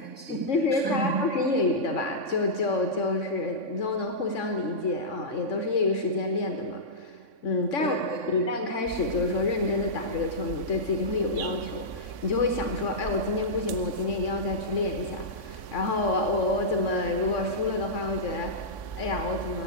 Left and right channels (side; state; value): right; late; 3.6 ms